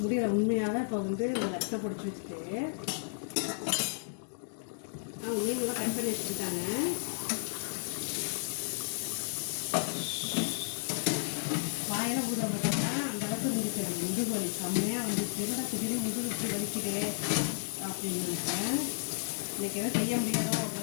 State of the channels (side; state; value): right; silent; digital silence